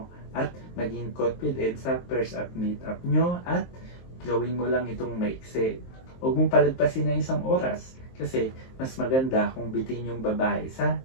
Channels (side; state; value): right; late; 23 ms